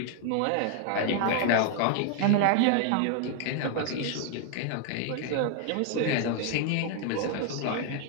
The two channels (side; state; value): both; different; correlation 0.00